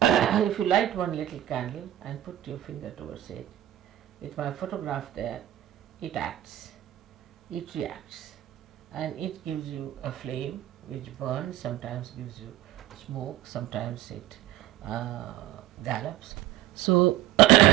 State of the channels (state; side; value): quieter; left; 13.9 dB